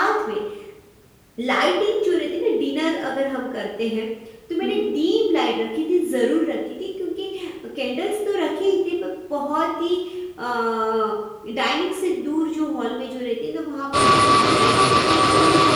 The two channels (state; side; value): identical; both; correlation 1.00